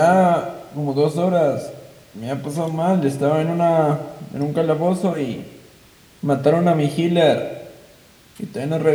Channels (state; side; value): identical; both; correlation 1.00